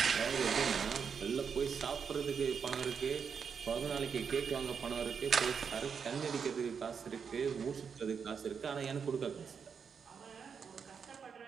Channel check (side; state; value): left; quieter; 6.4 dB